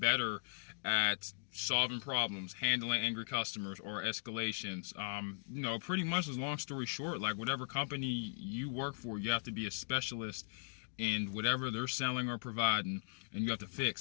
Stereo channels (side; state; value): right; silent; digital silence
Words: at solving problems, handling angry customers or escalations. Pretty much, as long story short, like whatever company you work for, you have to be a specialist in whatever they're selling or providing, and you have to